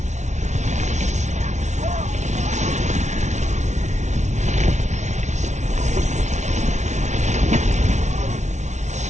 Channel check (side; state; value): left; late; 0.33 ms